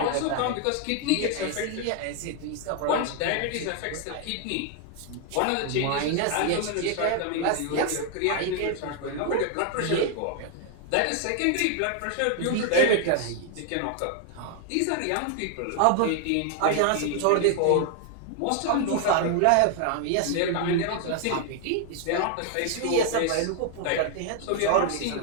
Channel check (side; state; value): both; different; correlation 0.00